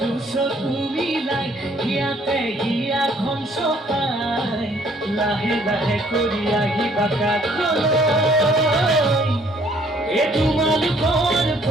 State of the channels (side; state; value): both; normal; correlation 0.62